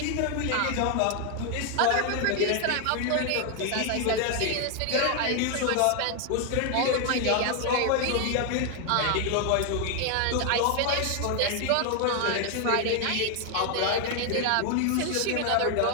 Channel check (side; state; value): both; different; correlation 0.00